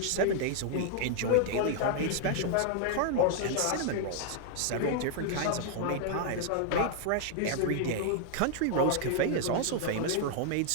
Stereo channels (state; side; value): different; both; correlation 0.00